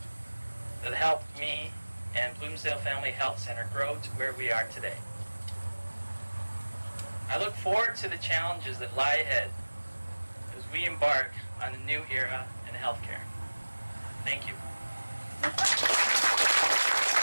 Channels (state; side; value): inverted; both; correlation -1.00